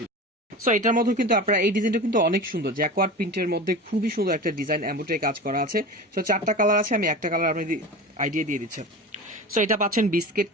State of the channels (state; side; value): normal; both; correlation 0.31